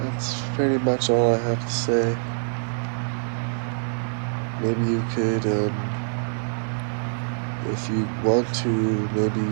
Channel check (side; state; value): left; silent; digital silence